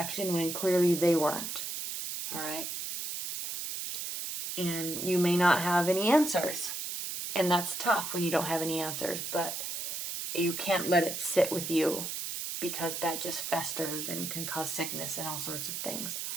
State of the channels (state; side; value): noise; right; hiss, 4 dB below the sound